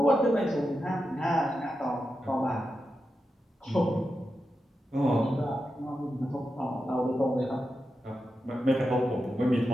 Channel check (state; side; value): normal; both; correlation 0.89